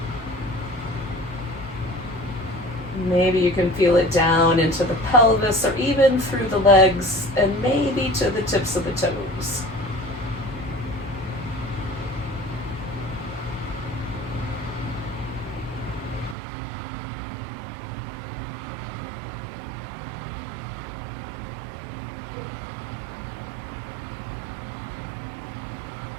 Maybe you can feel it down into the pelvis or even through the legs and maybe to the tips of the toes.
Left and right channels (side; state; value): left; drops out; at 16.4 s